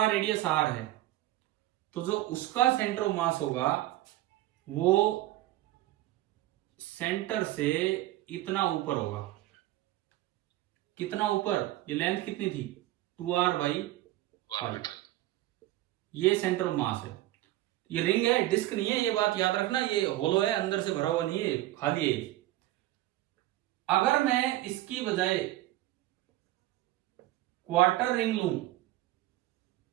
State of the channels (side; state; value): left; quieter; 15.8 dB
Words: रेडियस r है, तो जो उसका सेंटर ऑफ मास होगा वो सेंटर से इतना ऊपर होगा। कितना ऊपर? ये लेंथ कितनी थी? 2r/पाई। ये सेंटर ऑफ मास है। ये रिंग है, डिस्क नहीं है, ये बात याद रखना। ये होलो है, अंदर से भरा हुआ नहीं है, खाली है। अगर मैं इसकी बजाय क्वार्टर रिंग लूं,